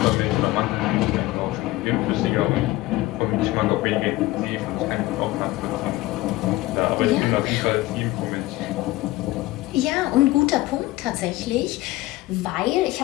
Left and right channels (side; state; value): right; quieter; 18.2 dB